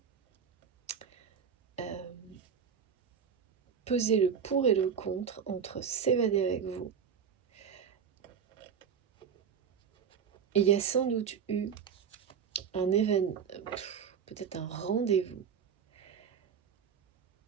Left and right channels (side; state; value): left; quieter; 7.2 dB